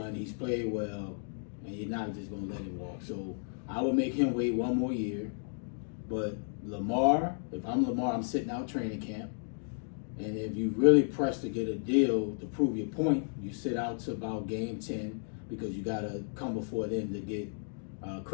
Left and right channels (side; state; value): right; silent; digital silence